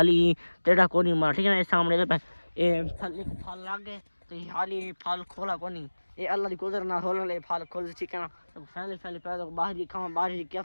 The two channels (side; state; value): both; inverted; correlation -1.00